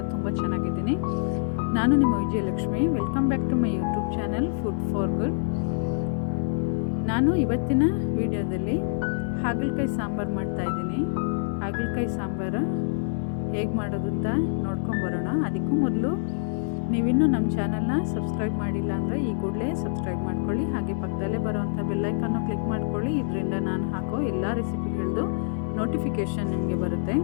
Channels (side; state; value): right; silent; 61 dB below the other